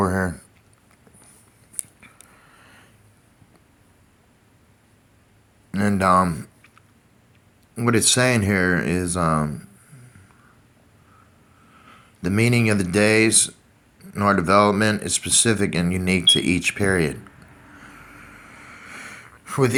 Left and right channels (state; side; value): identical; both; correlation 1.00